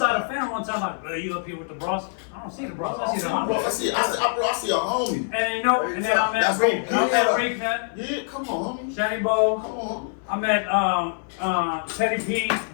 a fan one time like, bro, you up here with the bros? I don't see the bros. I see the Bro, homies. I see a homie. And you know, and then I met That's Rick. what- I met Rick Nut, Yeah, come on, homie. Shady Bo. Come on, I met Teddy P,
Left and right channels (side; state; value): right; silent; 60 dB below the other